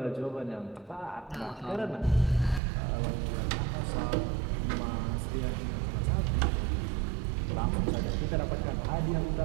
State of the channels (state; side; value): drops out; left; at 2.6 s